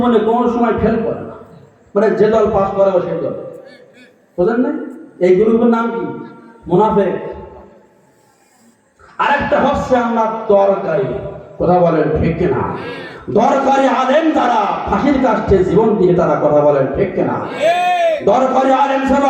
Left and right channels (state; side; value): identical; both; correlation 1.00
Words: কোনো সময় ফেল করে না, মানে যে দল পাস করে ও সেই দল, বুঝলেন না? এই গ্রুপের নাম কি? মুনাফিক। আরেকটা হচ্ছে আপনার দরকারি। কথা বলেন ঠিক কিনা? দরকারি আলেম যারা ফাঁসির কাছে জীবন দিয়ে তারা, কথা বলেন ঠিক কিনা? দরকারি আলেম ছিল